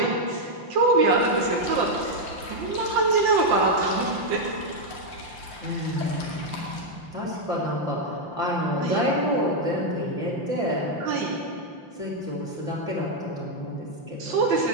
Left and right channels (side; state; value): left; late; 5.8 ms